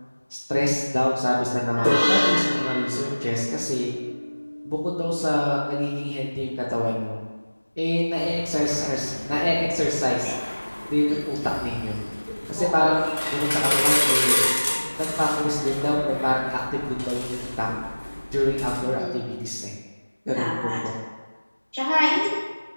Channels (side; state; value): both; inverted; correlation -1.00